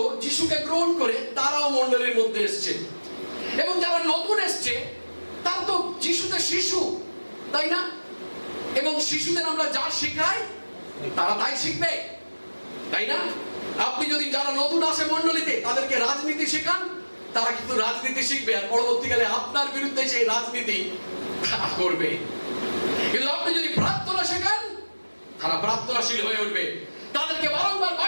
যিশুকে গ্রহণ করে তারাও মণ্ডলীর মধ্যে এসছে। এবং যারা নতুন এসছে তারা তো যিশুতে শিশু, তাই না? এবং শিশুদের আমরা যা শেখাই তারা তাই শিখবে, তাই না? আপনি যদি যারা নতুন আসে মণ্ডলীতে তাদেরকে রাজনীতি শেখান, তারা কিন্তু রাজনীতি শিখবে, আর পরবর্তীকালে আপনার বিরুদ্ধে সেই রাজনীতি করবে। কিন্তু আপনি যদি প্রার্থনা শেখান, তারা প্রার্থনাশীল হয়ে উঠবে। তাদেরকে বারংবার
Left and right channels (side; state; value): both; inverted; correlation -1.00